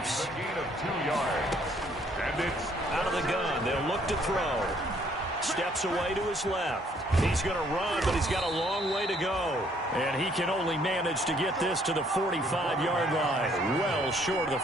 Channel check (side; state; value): both; normal; correlation 0.65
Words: A gain of 2 yards. And it's out of the gun. They'll look to throw. Steps away to his left. He's going to run, but he's got a long way to go. And he can only manage to get this to the 45-yard line. Well short of the